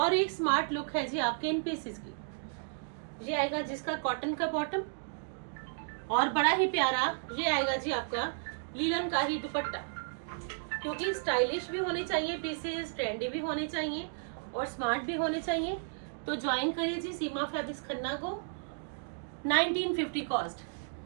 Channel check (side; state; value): left; silent; digital silence